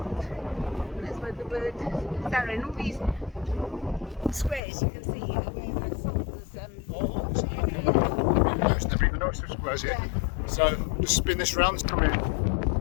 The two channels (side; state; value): right; drops out; at 4.6 s